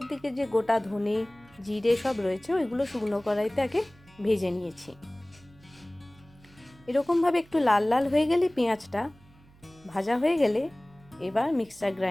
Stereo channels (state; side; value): noise; right; hum, 27 dB below the sound